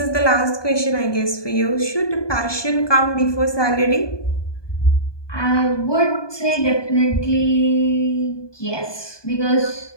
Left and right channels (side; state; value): right; late; 1.2 ms